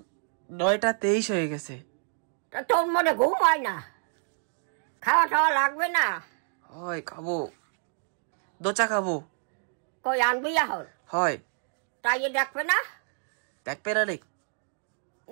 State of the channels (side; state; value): left; silent; 56 dB below the other